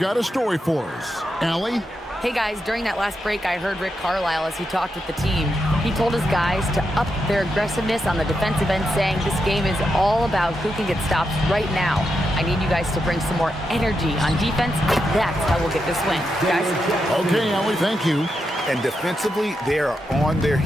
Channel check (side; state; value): both; normal; correlation 0.85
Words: a story for us. Allie? Hey guys, during that last break, I heard Rick Carlisle as he talked with the team. He told his guys to up their aggressiveness on the defensive end, saying this game is all about who can get stops right now. I need you guys to bring some more energy on defense. That's how we'll get this win. Guys? Okay, Allie, thank you. And defensively, they are on their